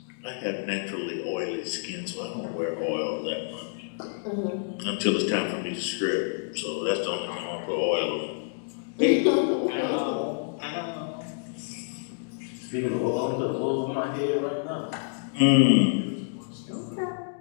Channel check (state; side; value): silent; right; digital silence